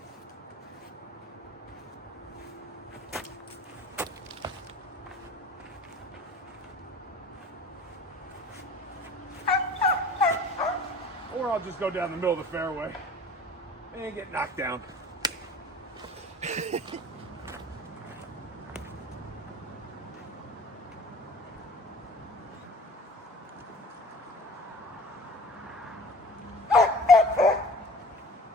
Or I'll just go down the middle of the fairway and get knocked down.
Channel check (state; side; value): normal; both; correlation 0.44